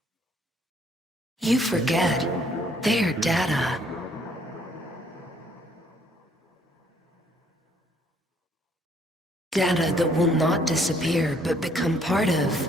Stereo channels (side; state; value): both; normal; correlation 0.65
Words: You forget. They are data. Data that will not disappear, but become part of